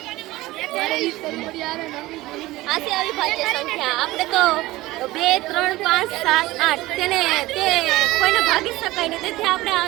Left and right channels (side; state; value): left; quieter; 18.4 dB